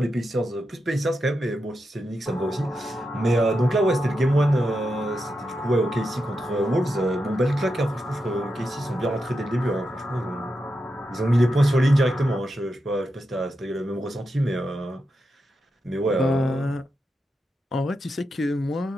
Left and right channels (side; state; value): both; normal; correlation 0.87